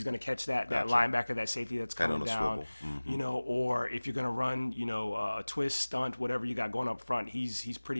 gonna catch that linebacker, that safety that's coming down. Or if you're gonna run, a twist, stunt, whatever you got going up front, he's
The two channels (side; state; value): both; inverted; correlation -1.00